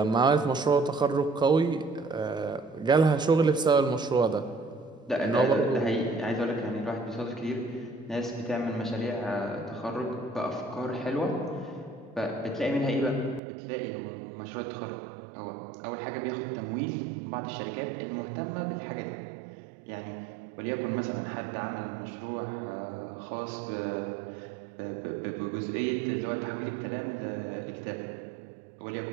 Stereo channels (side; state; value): left; drops out; at 13.4 s